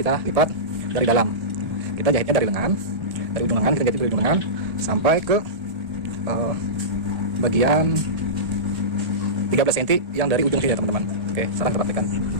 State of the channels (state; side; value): late; left; 1.7 ms